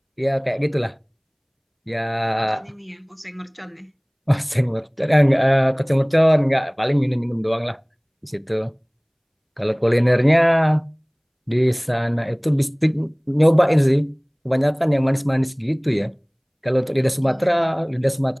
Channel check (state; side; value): identical; both; correlation 1.00